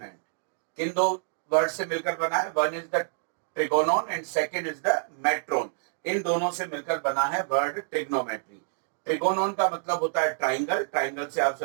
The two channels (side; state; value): left; silent; digital silence